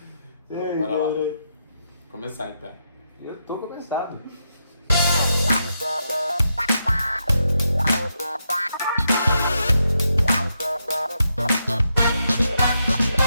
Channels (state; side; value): inverted; both; correlation -0.82